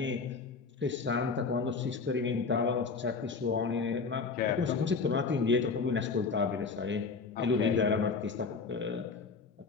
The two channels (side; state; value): right; quieter; 4.7 dB